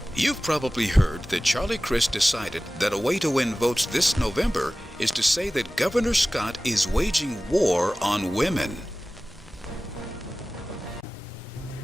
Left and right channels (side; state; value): both; normal; correlation 0.97